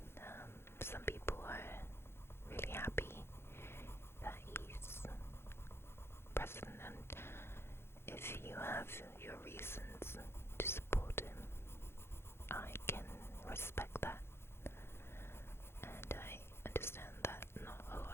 some people are really happy that he's president, and if you have your reasons to support him, I can respect that, and I understand that not a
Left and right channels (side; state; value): right; late; 0.12 ms